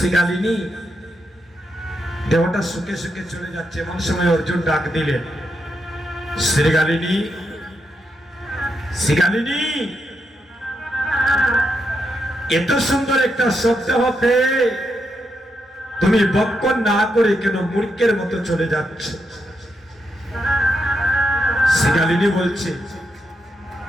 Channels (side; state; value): both; normal; correlation 0.83